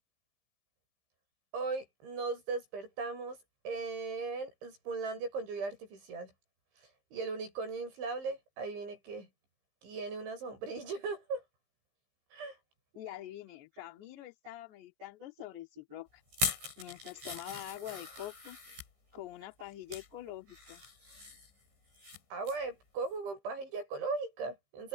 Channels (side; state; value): left; late; 15 ms